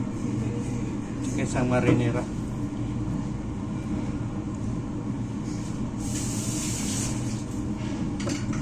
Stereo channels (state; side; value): identical; both; correlation 1.00